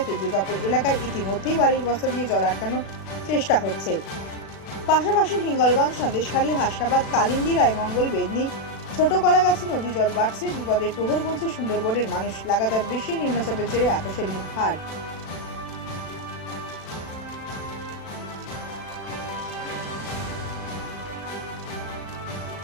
দুর্গাপুর এলাকায় ইতিমধ্যেই বাড়ির বস্তা দিয়ে জল আটকানোর চেষ্টা হচ্ছে। পাশাপাশি হিঙ্গলগঞ্জ, সন্দেশখালী, হাসনাবাদ, কালিন্দী, রায়মঙ্গল, বেদনী, ছোট কলাগাছি নদী জল বাড়ছে। বিপদের প্রহর গুনছে সুন্দরবনের মানুষ। লাগাতার বৃষ্টি, নিম্নচাপের জেরে আকাশের মুখ ভার।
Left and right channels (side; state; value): right; late; 36 ms